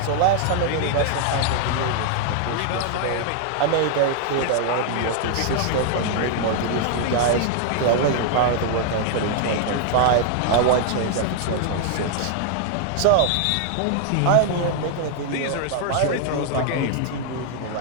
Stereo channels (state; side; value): different; both; correlation 0.00